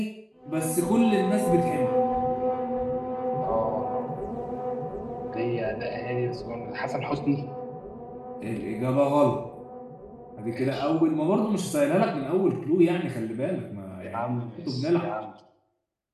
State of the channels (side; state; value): both; identical; correlation 1.00